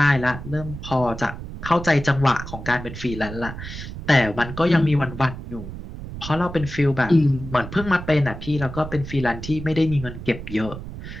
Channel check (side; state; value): right; noise; rumble, 10 dB below the sound